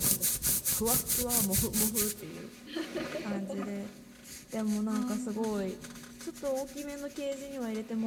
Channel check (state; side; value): identical; both; correlation 1.00